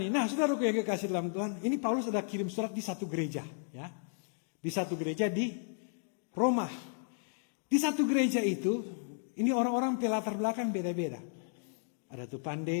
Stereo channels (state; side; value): silent; right; digital silence